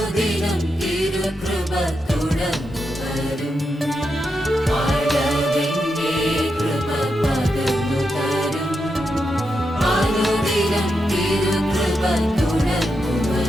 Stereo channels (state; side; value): normal; both; correlation 0.85